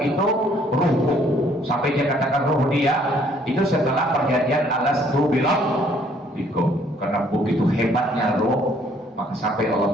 itu ruhku. Sampai dia katakan ruh dia itu setelah perjanjian alastu bikum. Karena begitu hebatnya roh, maka sampai Allah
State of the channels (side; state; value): both; normal; correlation 0.63